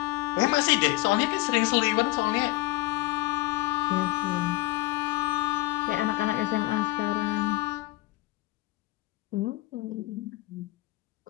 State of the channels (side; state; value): right; quieter; 19.5 dB